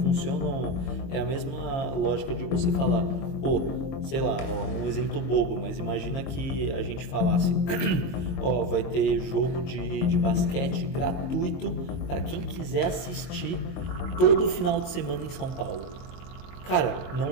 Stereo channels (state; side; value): late; right; 22 ms